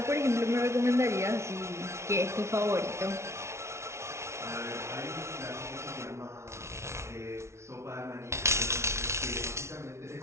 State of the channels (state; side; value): late; left; 0.13 ms